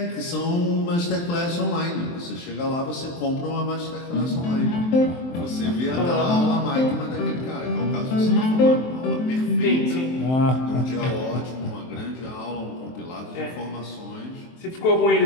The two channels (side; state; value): right; late; 23 ms